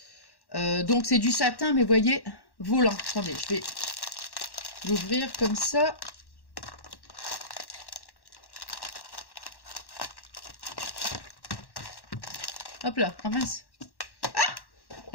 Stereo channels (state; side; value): late; right; 1.1 ms